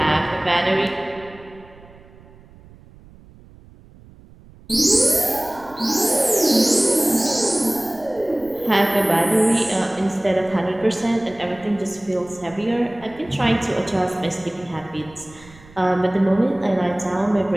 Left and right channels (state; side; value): noise; right; rumble, 23 dB below the sound